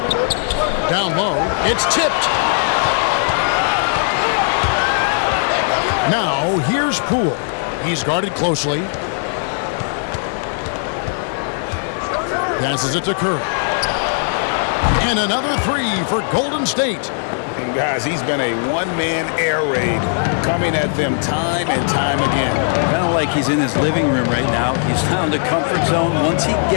Down low. It's tipped. Now, here's Poole. He's guarded closely. Passes it to Curry. And another 3 for Golden State. And guys, he's been a one-man air raid coming at them time and time again. Kind of like he's in his living room right now. He's found a comfort zone. Once he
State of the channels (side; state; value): right; silent; digital silence